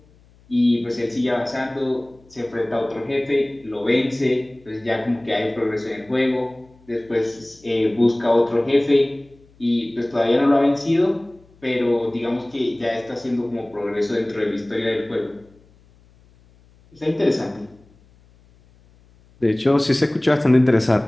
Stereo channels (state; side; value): noise; left; hum, 29 dB below the sound